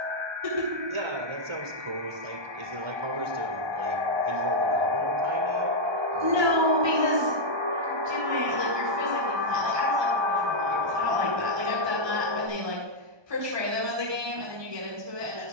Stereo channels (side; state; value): left; late; 1.2 ms